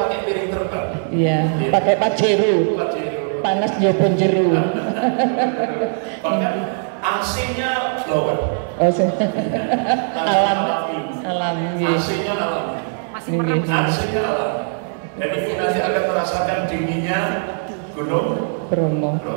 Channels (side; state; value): left; silent; digital silence